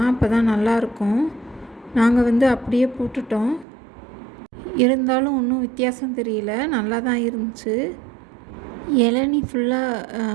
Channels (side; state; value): left; drops out; at 3.7 s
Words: அப்போ தான் நல்லாயிருக்கும். நாங்கள் அப்படியே போட்டுட்டோம். இருந்தாலும் ஒன்றும் வித்தியாசம் தெரியல, நல்லா தான் இருந்துச்சு. இளநீ ஃபுல்லாக